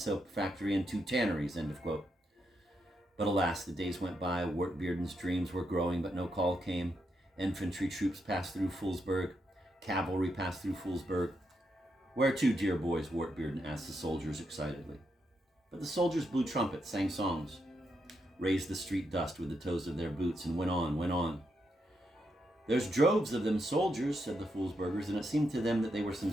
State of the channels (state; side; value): normal; both; correlation 0.82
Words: factory and 2 tanneries, end of quote. But alas, the days went by, Wartbearden's dreams were growing, but no call came. Infantry troops passed through Foolsburg, cavalry passed through Foolsburg. Where to, dear boys? Wartbearden asked the soldiers excitedly. But the soldiers blew trumpets, sang songs, raised the street dust with the toes of their boots, and went on, went on. "There's droves of them soldiers," said the Foolsburgers, and it seemed to them that they were some